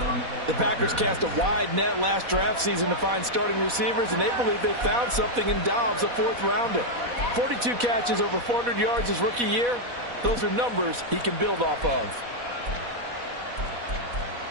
The Packers cast a wide net last draft season to find starting receivers, and they believe they found something in Dobbs, a 4th rounder. 42 catches, over 400 yards his rookie year. Those are numbers he can build off of.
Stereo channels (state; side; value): late; left; 4.1 ms